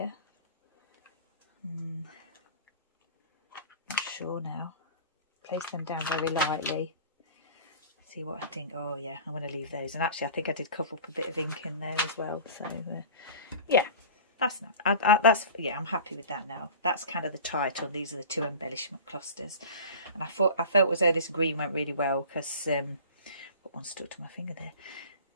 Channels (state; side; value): inverted; both; correlation -0.39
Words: Not sure now. Place them down very lightly. See what I think. Oh yeah, I'm going to leave those. And actually I think I did cover up a bit of ink in there as well. So yeah, that's not. Yeah, I'm happy with that now. That's kind of the title. These are the 2 embellishment clusters. And I felt as though this green went really well because what one stuck to my finger there.